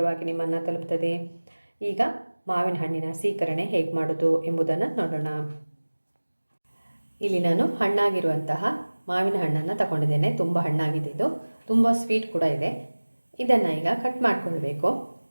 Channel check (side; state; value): both; inverted; correlation -1.00